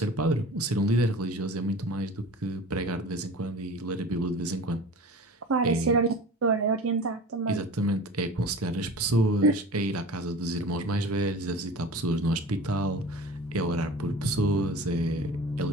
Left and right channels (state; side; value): normal; both; correlation 0.38